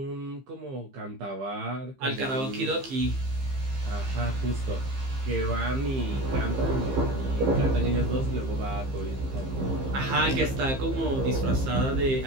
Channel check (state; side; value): late; left; 15 ms